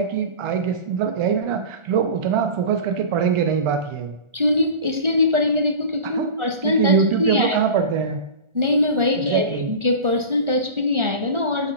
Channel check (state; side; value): late; left; 1.4 ms